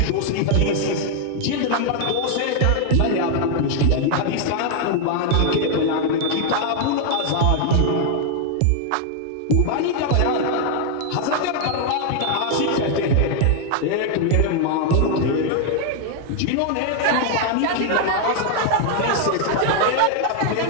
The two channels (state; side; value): different; both; correlation 0.00